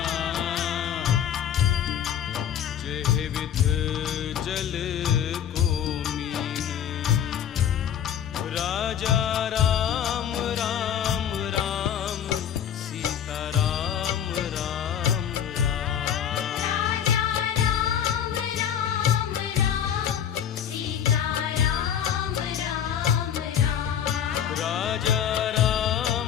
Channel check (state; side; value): quieter; right; 9.3 dB